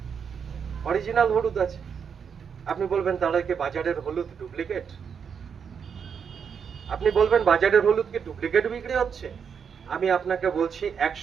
অরিজিনাল হলুদ আছে। আপনি বলবেন তাহলে কি বাজারের হলুদ ডুপ্লিকেট? আপনি বলবেন বাজারের হলুদ কি ডুপ্লিকেট বিক্রি হচ্ছে? আমি আপনাকে বলছি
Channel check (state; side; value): quieter; left; 6.9 dB